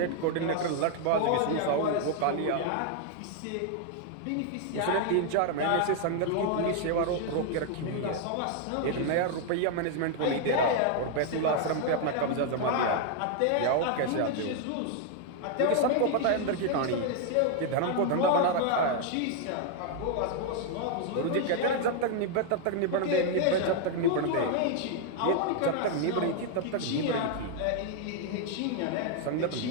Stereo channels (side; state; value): both; different; correlation 0.00